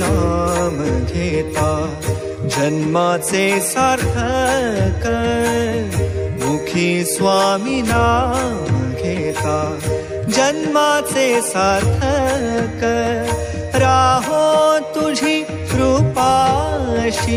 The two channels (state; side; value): identical; both; correlation 1.00